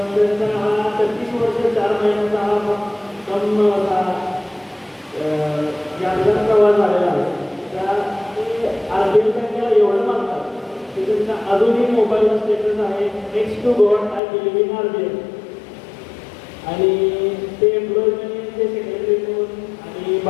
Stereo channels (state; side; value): drops out; right; at 14.2 s